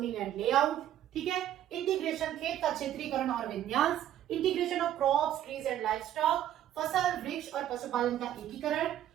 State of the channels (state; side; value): quieter; left; 11.7 dB